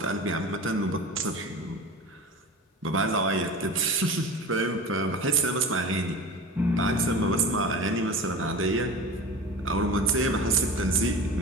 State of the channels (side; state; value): both; normal; correlation 0.33